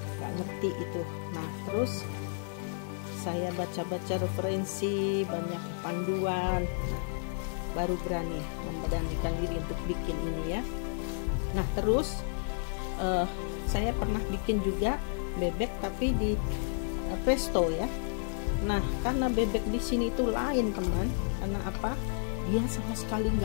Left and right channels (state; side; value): silent; right; digital silence